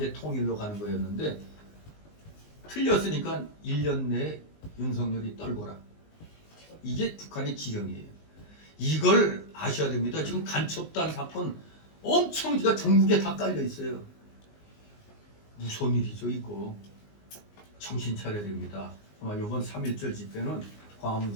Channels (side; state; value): right; late; 19 ms